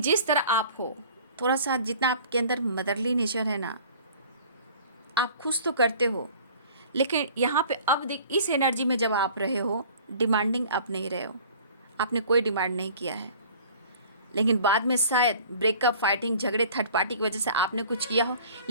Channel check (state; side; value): inverted; both; correlation -0.48